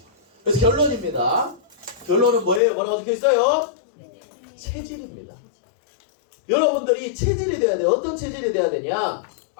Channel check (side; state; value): right; drops out; at 2.6 s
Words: 그래서 결론입니다. 결론은 뭐예요? 뭐라고 적혀 있어요? 체질입니다. 여러분들이 체질이 돼야 돼요. 어떤 체질이 돼야 되냐?